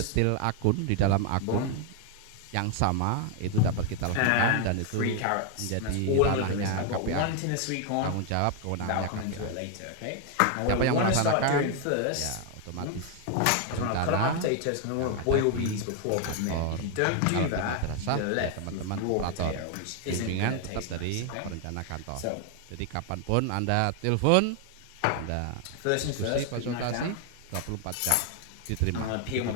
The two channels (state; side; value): different; both; correlation 0.00